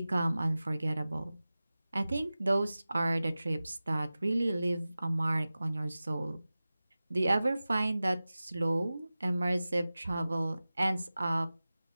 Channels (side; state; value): both; inverted; correlation -0.96